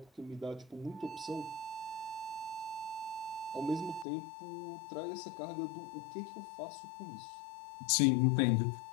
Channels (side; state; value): right; drops out; at 4.0 s